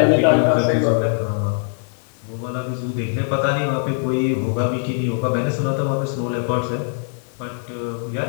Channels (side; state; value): right; silent; digital silence